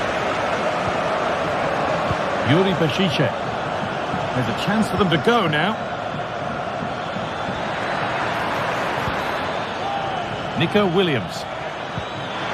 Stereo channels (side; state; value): both; identical; correlation 1.00